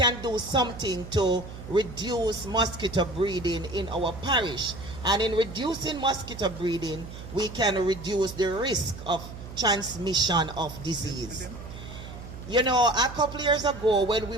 do something to reduce mosquito breeding in our parish. And in reducing mosquito breeding, we can reduce the risk of transmission of disease. You know, a couple years ago when we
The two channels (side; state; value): right; noise; hum, 12 dB below the sound